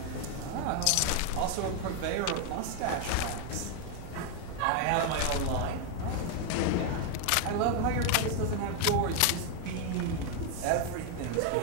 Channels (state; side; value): different; both; correlation 0.01